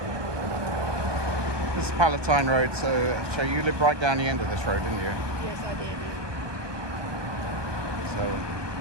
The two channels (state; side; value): late; left; 1.2 ms